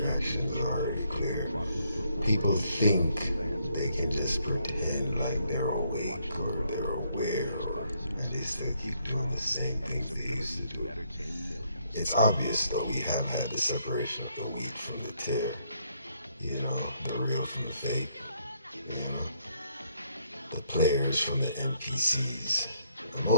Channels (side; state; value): both; inverted; correlation -0.71